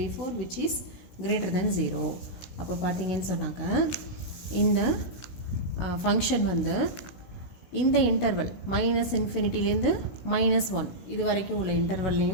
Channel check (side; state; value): right; late; 16 ms